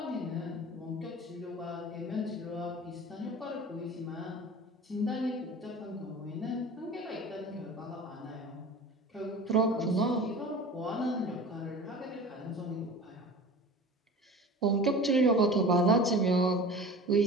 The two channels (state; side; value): normal; both; correlation 0.38